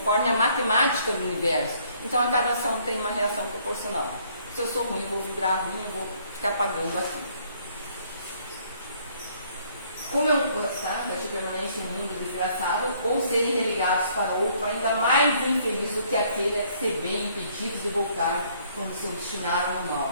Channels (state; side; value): inverted; both; correlation -0.63